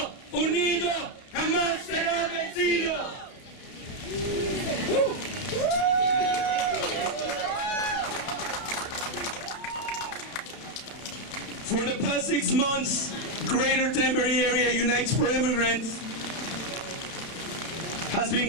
unido jamás será vencido. For the past 6 months, Greater Danbury Area Unites for Immigrants has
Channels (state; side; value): late; right; 32 ms